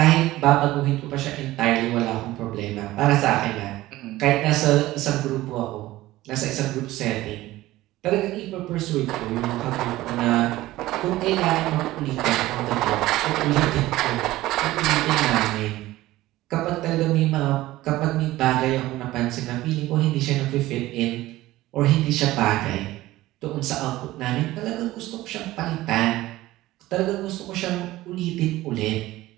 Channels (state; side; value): quieter; left; 16.9 dB